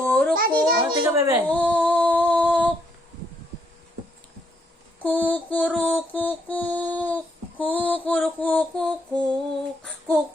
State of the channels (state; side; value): normal; both; correlation 0.73